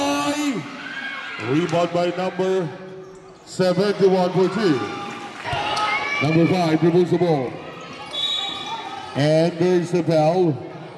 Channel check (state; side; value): identical; both; correlation 1.00